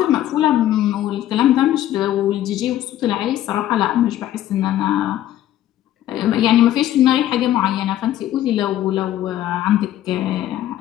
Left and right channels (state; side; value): quieter; right; 12.8 dB